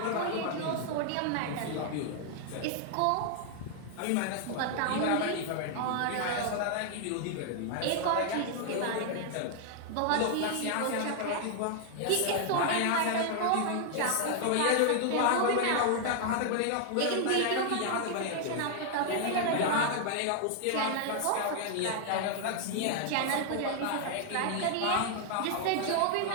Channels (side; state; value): both; different; correlation 0.00